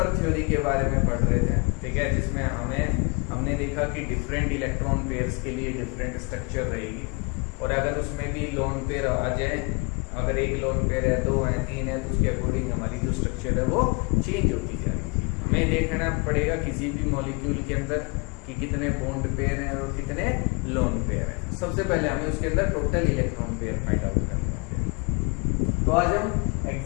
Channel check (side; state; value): right; quieter; 31.0 dB